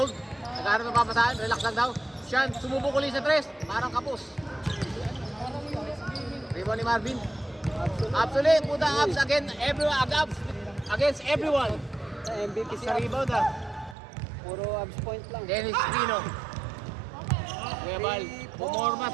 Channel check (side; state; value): left; drops out; at 14.0 s